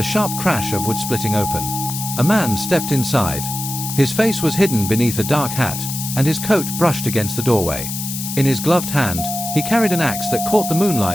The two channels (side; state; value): left; noise; hiss, 6 dB below the sound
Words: sharp crash of wood splitting open. A man stepped inside. His face was hidden beneath a dark hat, and his coat brushed against the doorway. In his gloved hand, he carried an axe that caught the